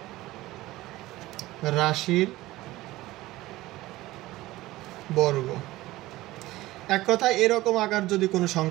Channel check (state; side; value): quieter; left; 17.6 dB